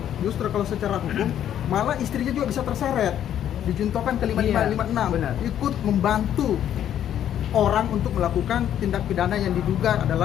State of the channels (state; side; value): quieter; right; 10.5 dB